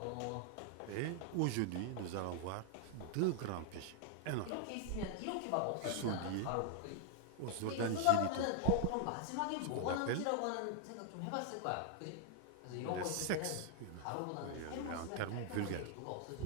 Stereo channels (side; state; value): both; different; correlation 0.00